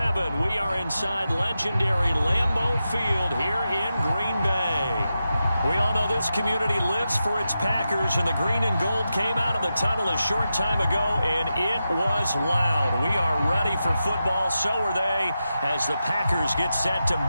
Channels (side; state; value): both; inverted; correlation -0.90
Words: We are inside legendary Lambeau Field here in Green Bay. We all know this community lives for its Packers, and the green and gold came out of the tunnel a short time ago, and it was loud. We are ready for football, so are they, as the Packers get set to